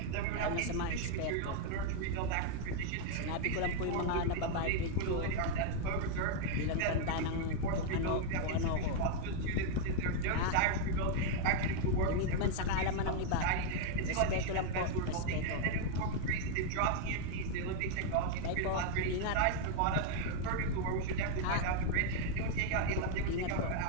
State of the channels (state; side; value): different; both; correlation 0.00